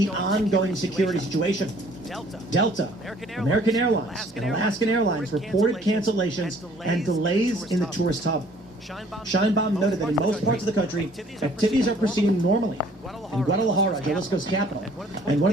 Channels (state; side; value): normal; both; correlation 0.57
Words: ongoing security situation. Delta, American Airlines, and Alaskan Airlines reported cancellations and delays in the tourist hub. Scheinbaum noted that in most parts of the country, activities are proceeding normally. In Guadalajara, Jalisco's capital, and one